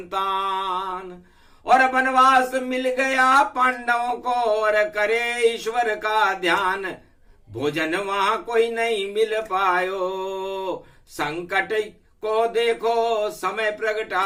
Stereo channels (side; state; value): both; identical; correlation 1.00